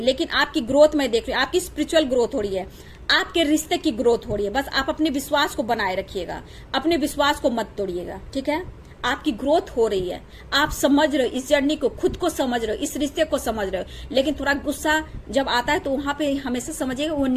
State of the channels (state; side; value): identical; both; correlation 1.00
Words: लेकिन आपकी ग्रोथ मैं देख रही हूँ, आपकी स्पिरिचुअल ग्रोथ हो रही है, आपके रिश्ते की ग्रोथ हो रही है। बस आप अपने विश्वास को बनाए रखिएगा, अपने विश्वास को मत तोड़िएगा। ठीक है, आपकी ग्रोथ हो रही है, आप समझ रहे हो इस जर्नी को, खुद को समझ रहे हो, इस रिश्ते को समझ रहे हो। लेकिन थोड़ा गुस्सा जब आता है तो वहां पे हमेशा समझिएगा वो